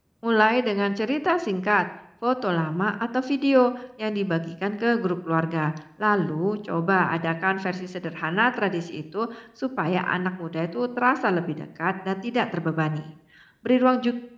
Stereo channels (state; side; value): identical; both; correlation 1.00